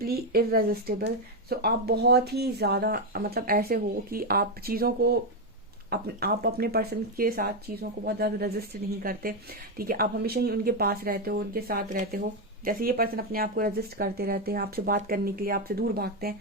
irresistible. So आप बहुत ही ज्यादा मतलब ऐसे हो कि आप चीजों को आप अपने पर्सन के साथ चीजों को बहुत ज्यादा रेजिस्ट नहीं करते, ठीक है। आप हमेशा ही उनके पास रहते हो, उनके साथ रहते हो। जैसे ये पर्सन अपने आप को रेजिस्ट करते रहते हैं आपसे बात करने के लिए, आपसे दूर भागते हैं,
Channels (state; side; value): normal; both; correlation 0.06